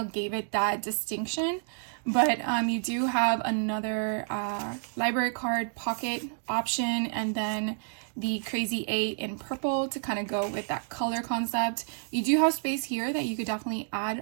gave it that distinction, but you do have another library card pocket option, and then the crazy 8 in purple to kind of go with that color concept. You do have space here that you could definitely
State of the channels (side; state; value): left; silent; digital silence